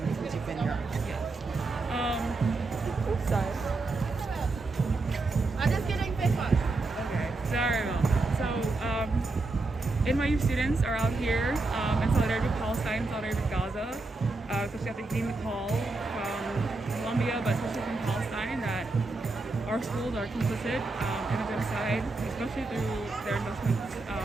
since you've been here? Oops, sorry. I'm just getting Facebook. Okay, sorry about that. So, NYU students are out here in solidarity with Palestine, in solidarity with Gaza, especially after getting the call from Colombia, but especially from Palestine, that our schools are complicit in the genocide, especially through their investments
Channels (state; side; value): quieter; left; 3.3 dB